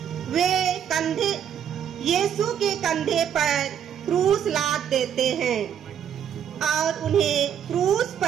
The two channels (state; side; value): quieter; left; 8.9 dB